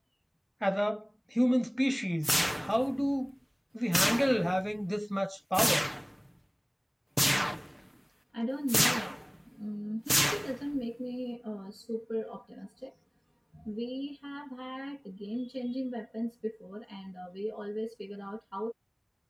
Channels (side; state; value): both; identical; correlation 1.00